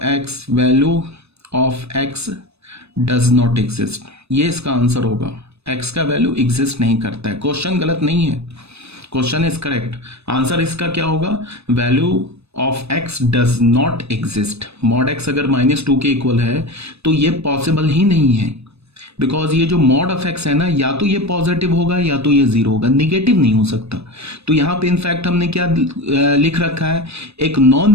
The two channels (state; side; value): late; left; 0.79 ms